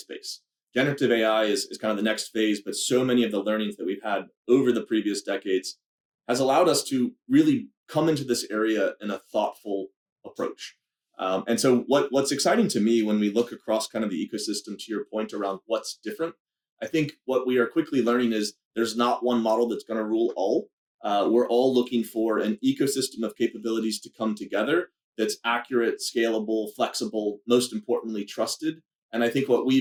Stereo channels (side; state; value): both; identical; correlation 1.00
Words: Generative AI is kind of the next phase, but so many of the learnings that we've had over the previous decades has allowed us to really come into this area in a thoughtful approach. And so what's exciting to me when we look across kind of the ecosystem, to your point around what's different, I think what we are quickly learning is there's not one model that's going to rule all. We're all looking for an ecosystem of capabilities to come together that's accurate, scalable, flexible, most importantly, trusted. And I think what